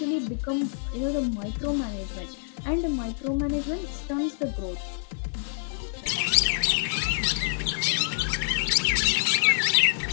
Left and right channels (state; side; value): silent; right; digital silence